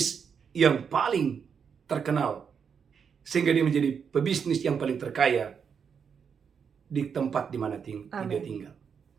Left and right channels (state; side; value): quieter; left; 6.7 dB